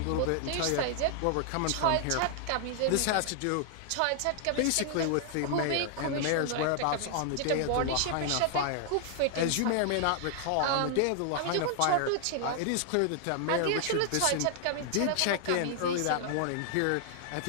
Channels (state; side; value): different; both; correlation 0.00